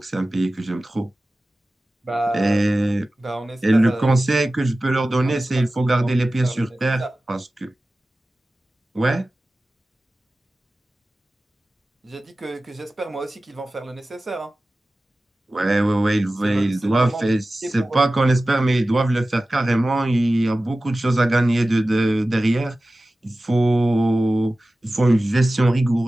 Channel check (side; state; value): both; normal; correlation 0.96